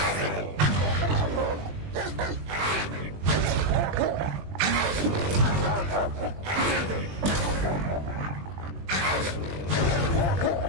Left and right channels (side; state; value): left; late; 20 ms